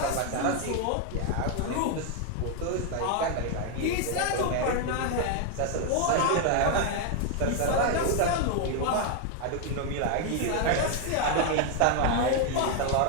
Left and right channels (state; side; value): different; both; correlation 0.01